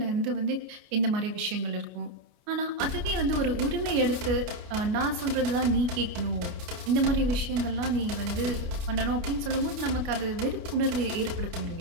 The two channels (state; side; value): late; left; 29 ms